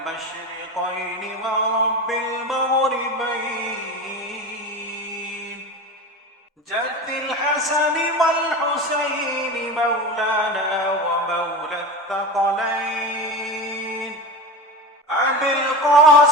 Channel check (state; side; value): normal; both; correlation 0.27